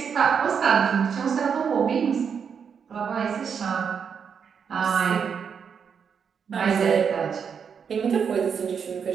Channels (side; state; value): left; quieter; 6.8 dB